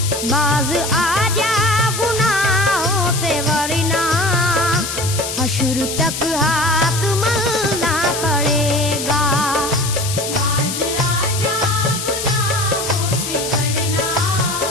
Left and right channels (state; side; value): noise; left; hiss, 5 dB below the sound